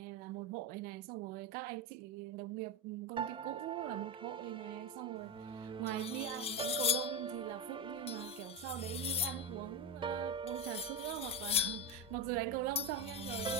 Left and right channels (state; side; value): normal; both; correlation 0.14